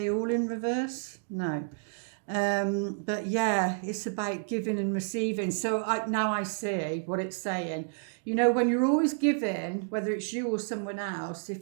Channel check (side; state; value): left; silent; digital silence